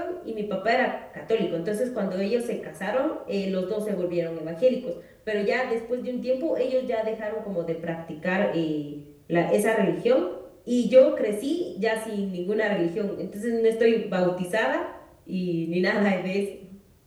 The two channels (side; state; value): both; identical; correlation 1.00